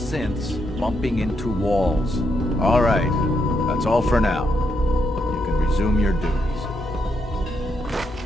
bumping into walls. All right, that's all for now. You can resume your duties.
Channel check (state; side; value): normal; both; correlation 0.79